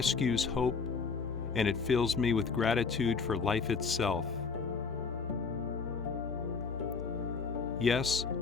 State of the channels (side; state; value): right; quieter; 5.1 dB